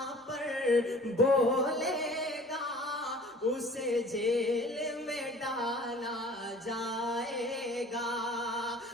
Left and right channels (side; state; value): both; normal; correlation 0.48